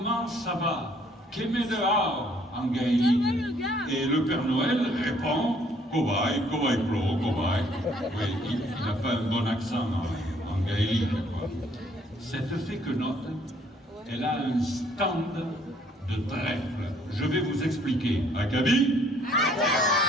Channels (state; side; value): normal; both; correlation 0.62